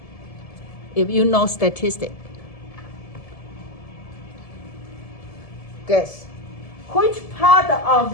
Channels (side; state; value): right; late; 1.7 ms